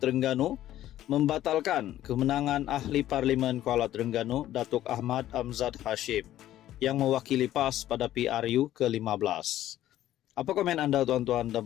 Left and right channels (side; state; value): right; quieter; 13.2 dB